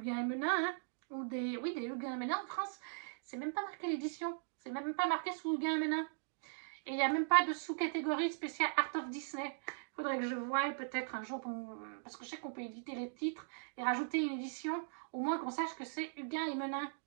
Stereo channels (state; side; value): silent; left; digital silence